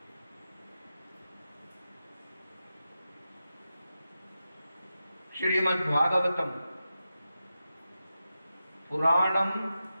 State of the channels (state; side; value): inverted; both; correlation -0.91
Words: శ్రీమద్ భాగవతం పురాణం